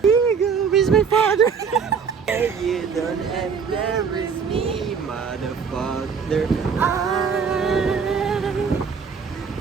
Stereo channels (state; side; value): quieter; left; 6.1 dB